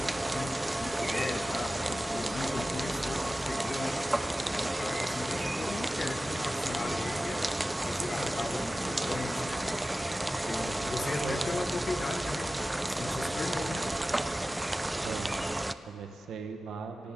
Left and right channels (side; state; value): both; normal; correlation 0.95